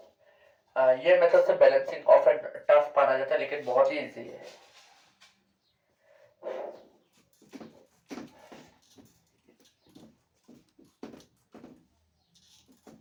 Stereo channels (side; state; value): both; identical; correlation 1.00